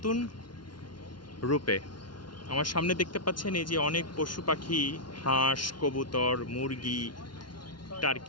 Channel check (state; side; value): late; right; 0.71 ms